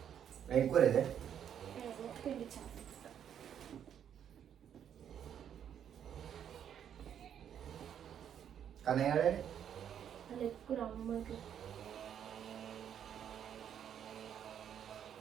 ఎక్కువ లేదే కానీ ఎక్కువ అమ్మకి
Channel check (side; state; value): left; quieter; 9.1 dB